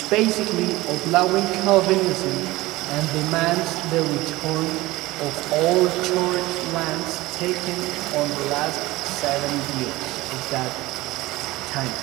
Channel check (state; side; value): quieter; left; 19.3 dB